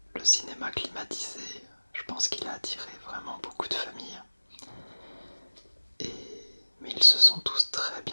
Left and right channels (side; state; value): both; inverted; correlation -1.00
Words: le cinéma climatisé, je pense qu'il a attiré vraiment beaucoup de familles. Mais ils se sont tous très